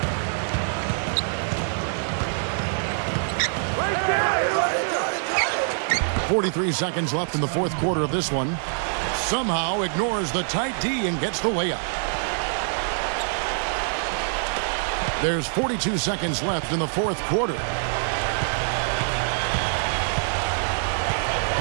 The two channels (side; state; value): left; silent; digital silence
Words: 43 seconds left in the fourth quarter of this one. Somehow ignores the tight D and gets the layup. There's 42 seconds left in the fourth quarter.